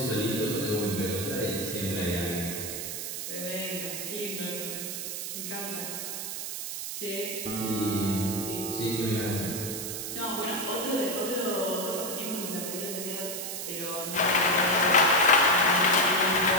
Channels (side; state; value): right; noise; hiss, 5 dB below the sound